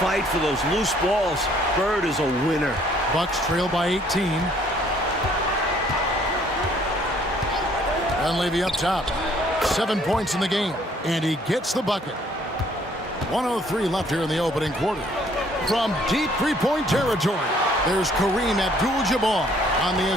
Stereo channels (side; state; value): both; normal; correlation 0.61